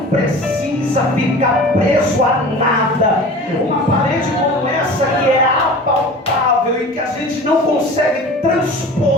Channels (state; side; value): normal; both; correlation 0.39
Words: precisa ficar preso a nada. Uma parede como essa, que é apalpável e que a gente não consegue